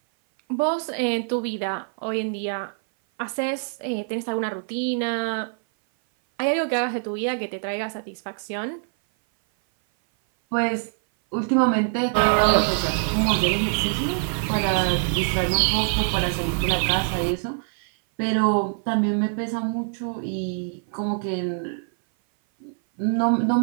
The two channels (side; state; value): left; silent; 58 dB below the other